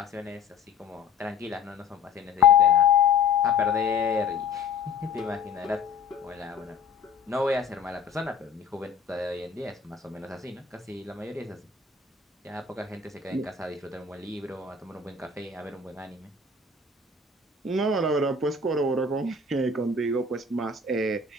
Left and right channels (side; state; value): right; quieter; 5.0 dB